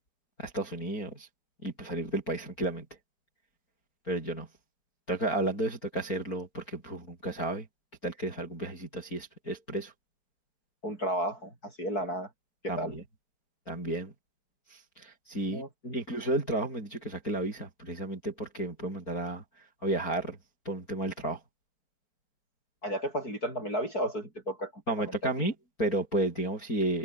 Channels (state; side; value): late; right; 4.4 ms